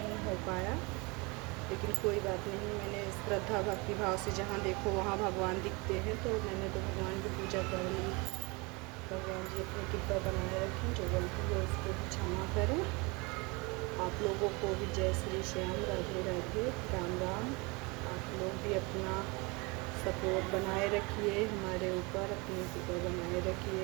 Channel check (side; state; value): left; quieter; 27.2 dB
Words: हो पाया। लेकिन कोई बात नहीं, मैंने श्रद्धा भक्ति भाव से जहाँ देखो वहाँ भगवान दिखते हैं तो मैंने तो भगवान की पूजा कर ली। भगवान जी अपनी कृपा बनाए रखें, जो गलती है उसको भी क्षमा करें। आप लोगों को भी जय श्री श्याम, राधे राधे, राम राम। आप लोग भी अपना सपोर्ट बनाए रखिए हमारे ऊपर, अपनी कृपा बनाए